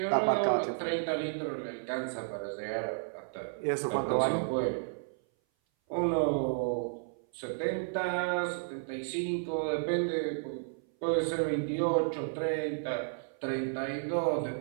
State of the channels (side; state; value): left; silent; 56 dB below the other